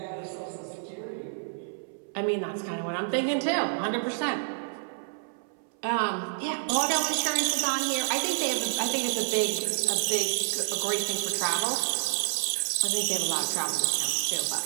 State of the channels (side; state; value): left; silent; 59 dB below the other